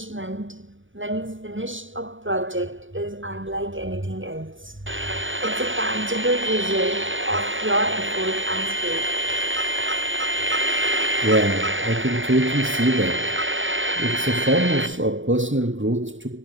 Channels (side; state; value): left; late; 0.57 ms